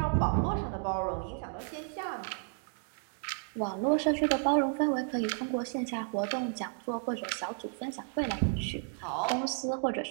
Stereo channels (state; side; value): silent; left; 56 dB below the other